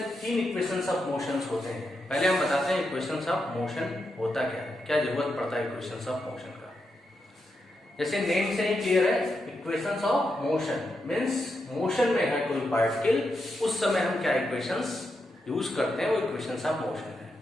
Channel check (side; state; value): both; normal; correlation 0.85